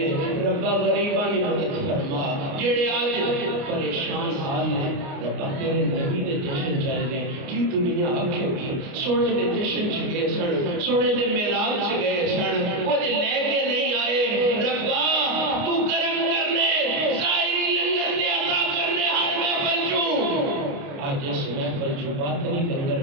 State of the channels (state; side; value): late; left; 29 ms